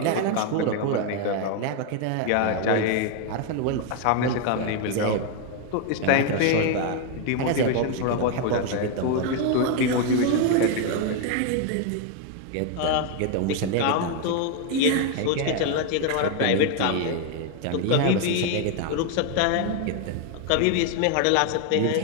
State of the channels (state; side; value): different; both; correlation 0.01